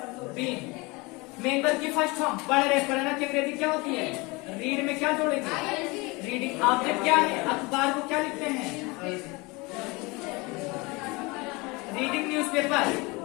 been. मेन वर्ब की फर्स्ट फॉर्म पढ़ रहे। पढ़ना की अंग्रेजी क्या होती है? रीड में क्या जोड़ेंगे? रीडिंग। ऑब्जेक्ट क्या है? अखबार को क्या लिखते हैं? Reading newspaper.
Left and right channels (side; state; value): right; quieter; 25.4 dB